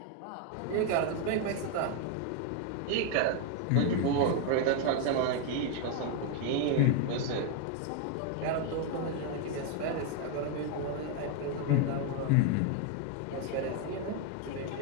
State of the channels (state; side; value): different; both; correlation 0.01